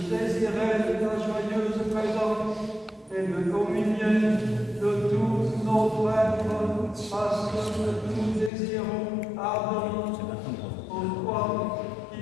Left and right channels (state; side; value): drops out; right; at 8.5 s